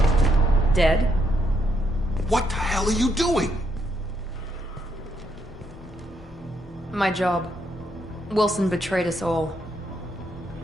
Dead? What the hell are you doing? My job. Wilson betrayed us all.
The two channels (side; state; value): both; normal; correlation 0.76